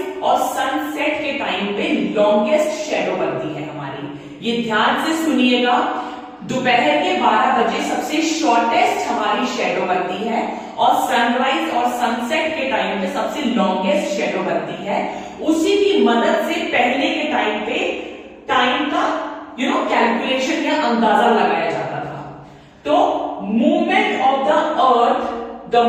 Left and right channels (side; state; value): both; identical; correlation 1.00